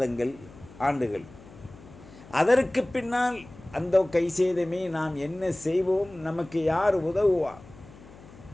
ஆண்டுகள். அதற்கு பின்னால் அந்த கை சேதமே நாம் என்ன செய்வோம்? நமக்கு யார் உதவுவார்?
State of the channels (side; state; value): left; noise; hum, 20 dB below the sound